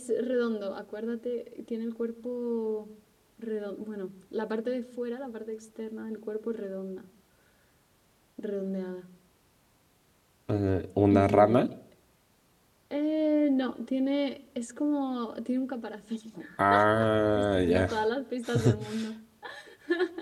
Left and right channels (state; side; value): identical; both; correlation 1.00